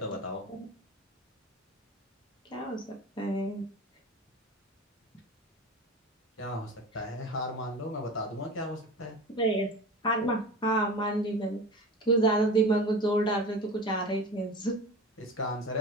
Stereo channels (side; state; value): both; normal; correlation 0.33